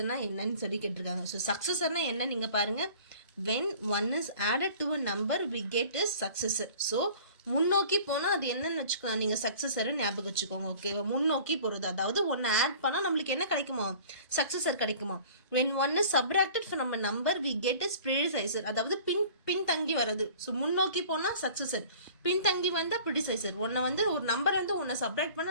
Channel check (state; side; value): inverted; both; correlation -0.47